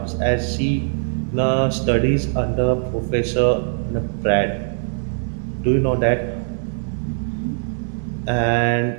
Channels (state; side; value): silent; left; 63 dB below the other